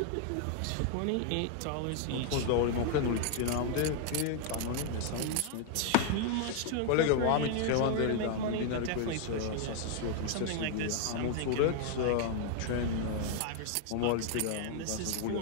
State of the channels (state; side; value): different; both; correlation 0.00